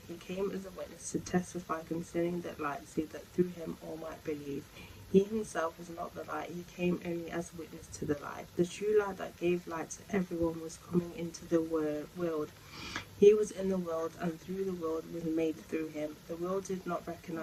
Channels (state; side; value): identical; both; correlation 1.00